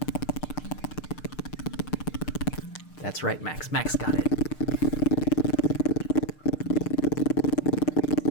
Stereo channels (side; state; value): right; late; 6.6 ms